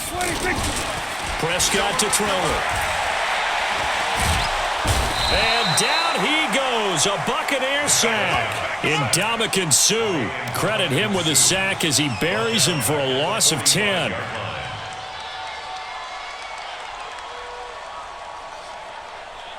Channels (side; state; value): both; identical; correlation 1.00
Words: 26. Prescott to throw it. And down he goes. A Buccaneer sack. Ndamukong Suh. Credit him with a sack as he buries him for a loss of 10.